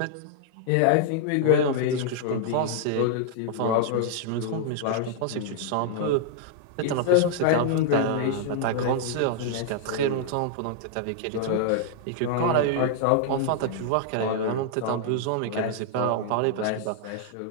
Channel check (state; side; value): different; both; correlation -0.01